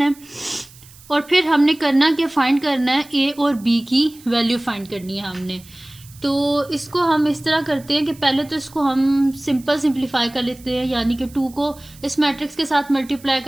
है। और फिर हमने करना क्या, फाइंड करना है ए और बी की वैल्यू फाइंड करनी है हमने। तो इसको हम इस तरह करते हैं कि पहले तो इसको हम सिंप्लीफाई कर लेते हैं, यानी कि 2 को इस मैट्रिक्स के साथ मल्टीप्लाई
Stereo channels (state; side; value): noise; right; hiss, 23 dB below the sound